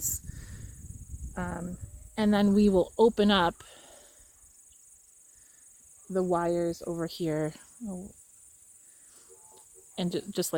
And then we will open up the wires over here, and just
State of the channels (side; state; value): both; identical; correlation 1.00